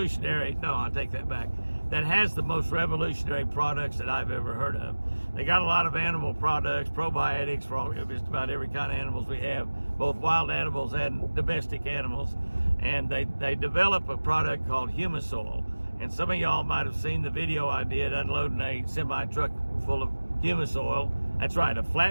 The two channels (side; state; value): both; inverted; correlation -1.00